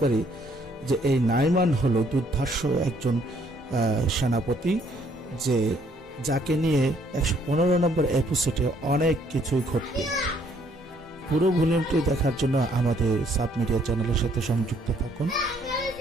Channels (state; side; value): normal; both; correlation 0.66